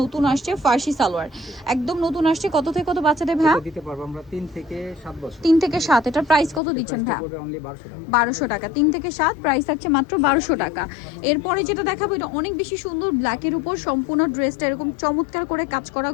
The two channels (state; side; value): drops out; right; at 6.6 s